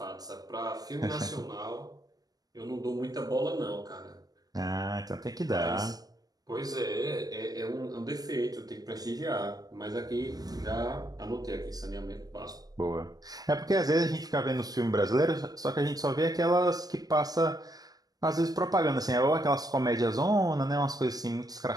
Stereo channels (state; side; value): late; left; 0.18 ms